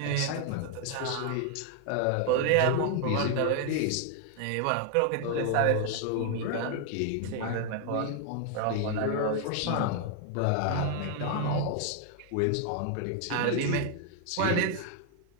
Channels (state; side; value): different; both; correlation 0.00